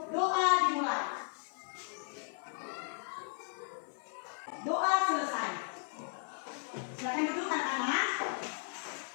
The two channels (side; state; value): right; silent; 54 dB below the other